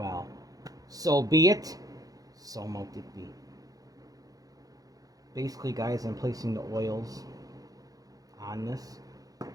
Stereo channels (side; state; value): left; late; 0.17 ms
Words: So be it, so mote it be. Basically, guys, I'm placing the oils on this.